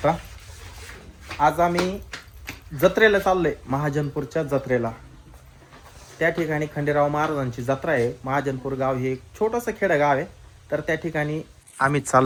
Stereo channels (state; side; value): identical; both; correlation 1.00